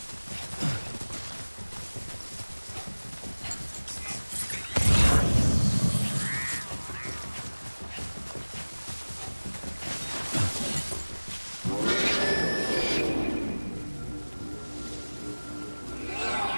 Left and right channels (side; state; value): both; inverted; correlation -1.00